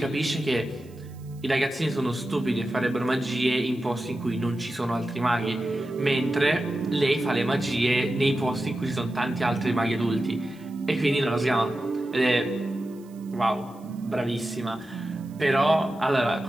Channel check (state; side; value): noise; right; hiss, 29 dB below the sound